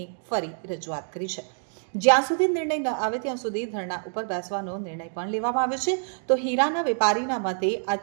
ફરી રજૂઆત કરી છે। જ્યાં સુધી નિર્ણય ન આવે ત્યાં સુધી ધરણા ઉપર બેસવાનો નિર્ણય પણ લેવામાં આવ્યો છે। તો હીરાના વેપારીના મતે આ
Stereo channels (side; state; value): left; silent; digital silence